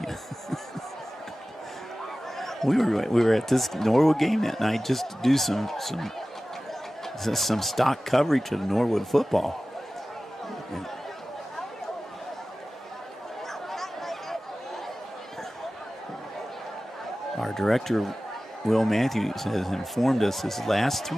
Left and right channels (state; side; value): normal; both; correlation 0.96